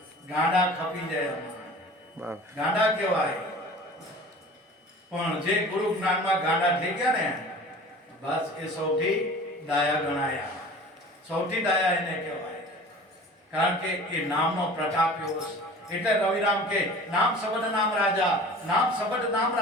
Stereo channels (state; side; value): normal; both; correlation 0.41